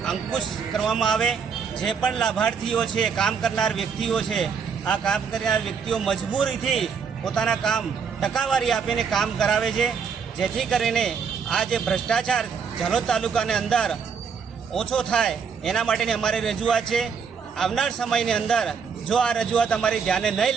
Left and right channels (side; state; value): left; quieter; 6.3 dB